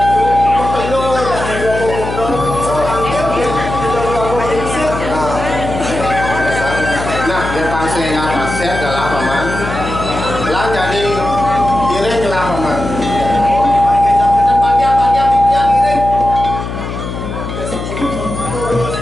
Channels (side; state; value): left; noise; hum, 6 dB below the sound